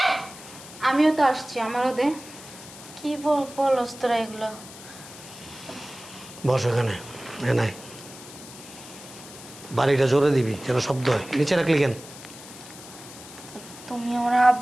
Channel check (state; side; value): noise; left; hiss, 16 dB below the sound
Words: আমিও তো আসছি, আমারও দে। কি বলস তোরা এগুলো? বস এখানে, এ নাই, বাড়িটা জোরে দিবি যেন শব্দ হয়। নিচে রাখলি কেন? তুমি আমার